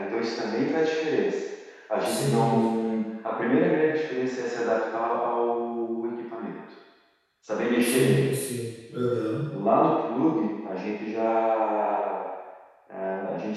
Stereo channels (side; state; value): both; identical; correlation 1.00